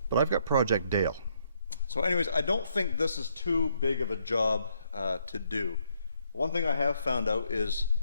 but I've got Project Dale. So anyways, I don't think this is too big of a job to do. One thing I have found out is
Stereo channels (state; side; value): inverted; both; correlation -0.73